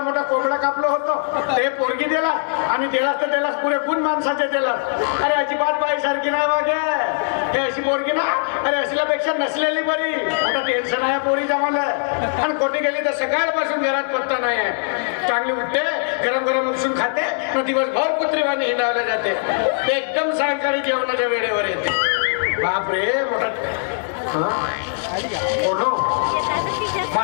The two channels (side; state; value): right; silent; digital silence